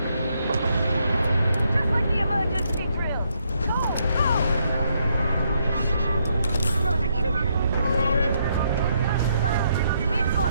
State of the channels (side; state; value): both; inverted; correlation -0.76